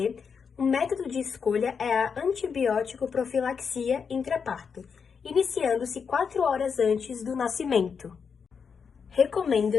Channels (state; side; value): quieter; right; 6.1 dB